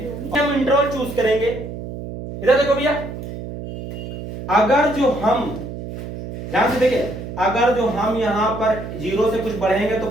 हम इंटरवल चूज करेंगे, इधर देखो भैया। अगर जो हम ध्यान से देखिए, अगर जो हम यहाँ पर 0 से कुछ बढ़ेंगे तो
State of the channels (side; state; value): right; noise; hum, 9 dB below the sound